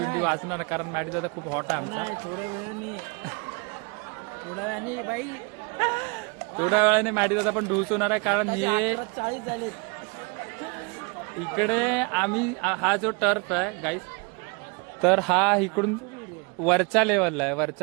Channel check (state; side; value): quieter; left; 30.5 dB